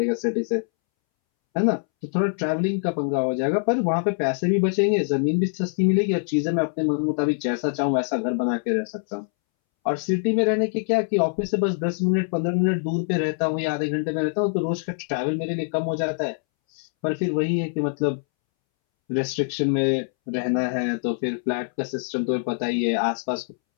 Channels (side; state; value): right; silent; 63 dB below the other